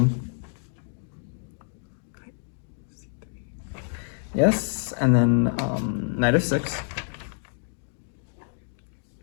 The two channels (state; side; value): silent; right; digital silence